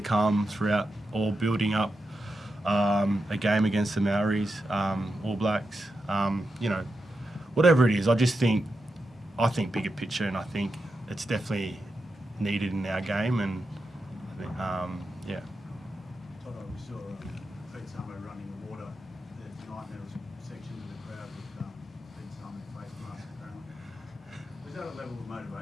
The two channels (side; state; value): both; normal; correlation 0.88